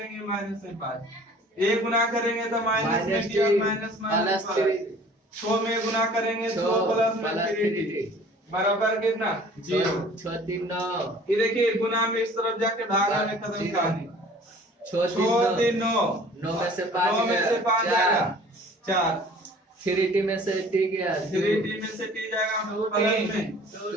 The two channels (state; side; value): normal; both; correlation 0.49